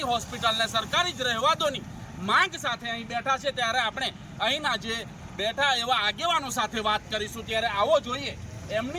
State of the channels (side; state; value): both; identical; correlation 1.00